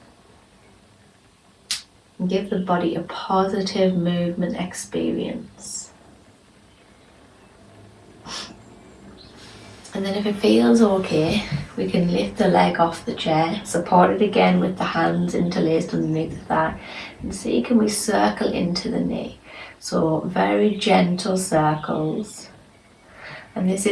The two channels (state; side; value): identical; both; correlation 1.00